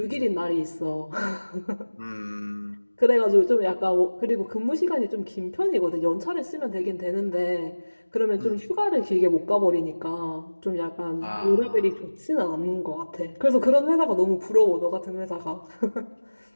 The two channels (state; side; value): inverted; both; correlation -1.00